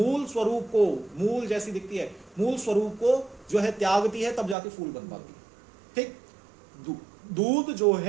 स्वरूप को, मूल जैसी दिखती है, मूल स्वरूप को जो है त्यागती है, तब जाके फूल बन पाती है। ठीक, दूध जो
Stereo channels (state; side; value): drops out; left; at 4.5 s